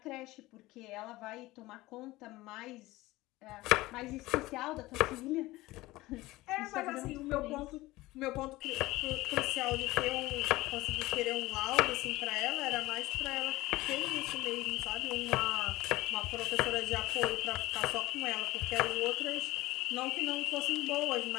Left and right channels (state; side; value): quieter; right; 18.8 dB